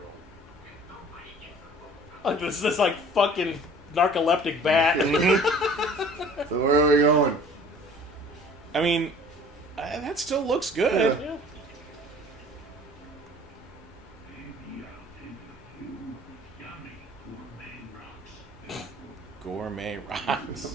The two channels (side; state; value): both; normal; correlation 0.49